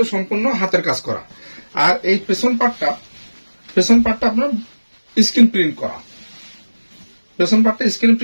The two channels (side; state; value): both; inverted; correlation -1.00